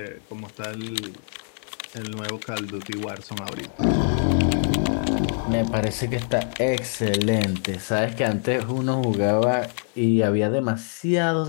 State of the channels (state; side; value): silent; right; 62 dB below the other